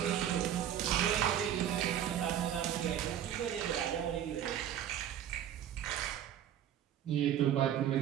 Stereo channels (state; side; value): quieter; left; 10.4 dB